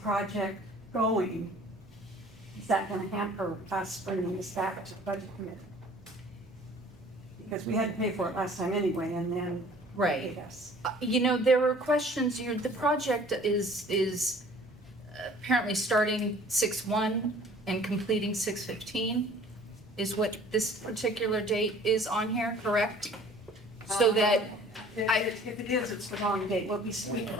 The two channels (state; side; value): normal; both; correlation 0.51